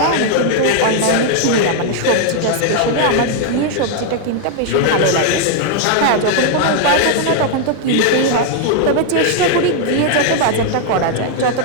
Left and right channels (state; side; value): different; both; correlation 0.00